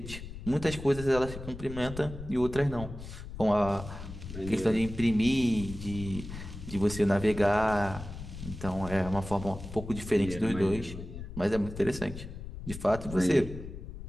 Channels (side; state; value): left; noise; rumble, 10 dB below the sound